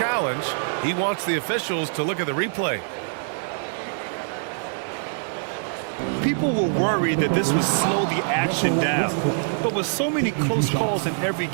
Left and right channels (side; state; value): left; silent; digital silence